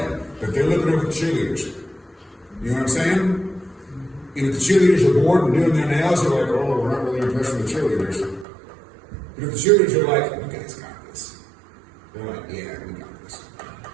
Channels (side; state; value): left; drops out; at 8.5 s